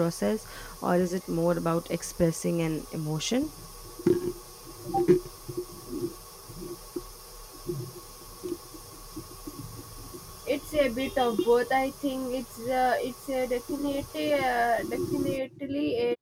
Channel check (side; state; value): both; identical; correlation 1.00